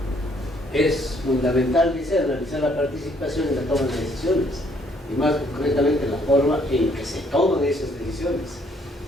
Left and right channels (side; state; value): both; normal; correlation 0.66